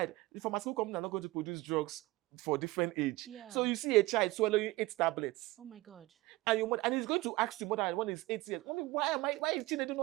the pharmaceutical company are not going to produce drugs for different age. Yeah. So you see a child swallowing 8 tablets. Oh my God. And and he's going to ask you more than when he's 8 years, Mommy, why is Chinedu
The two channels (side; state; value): left; quieter; 19.9 dB